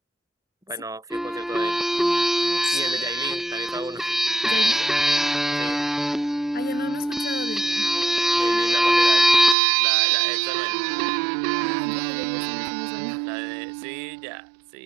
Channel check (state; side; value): drops out; left; at 9.6 s